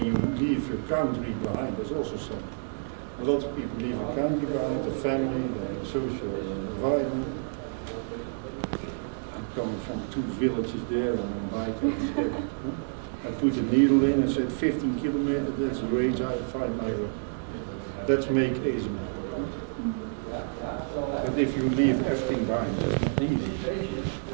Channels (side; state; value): left; silent; digital silence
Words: you leave your country behind. There's also some. A lot of people leave the country behind, the family, the social environment. I'm coming from 2 villages there on a bike. I put a needle in and said 15 kilometers, that's the range I find my way. Let's make ASML. But if you leave everything behind, it's not easy.